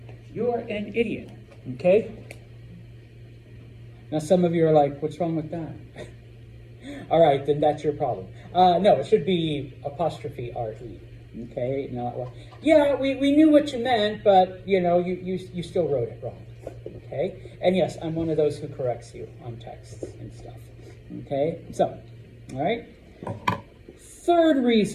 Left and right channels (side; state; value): both; identical; correlation 1.00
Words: you're an idiot, okay? Now some of you are like, what's wrong with that? All right, then that's your problem. No, it should be apostrophe R-E, okay? Not, well, yeah, we knew what you meant, but you know, you still wrote it wrong, okay? And yes, I'm one of those who corrects you on texts and stuff, okay? So, all right? Third